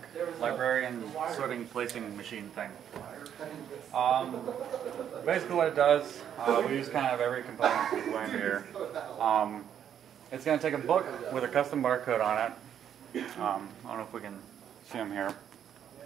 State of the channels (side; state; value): left; quieter; 9.3 dB